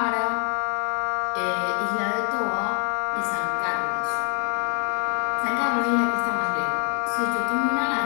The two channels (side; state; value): right; quieter; 37.9 dB